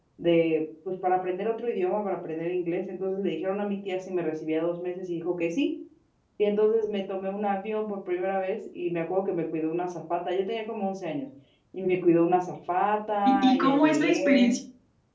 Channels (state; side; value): identical; both; correlation 1.00